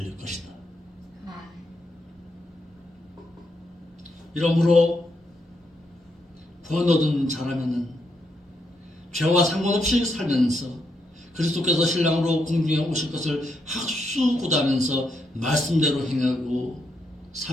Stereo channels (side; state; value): both; normal; correlation 0.79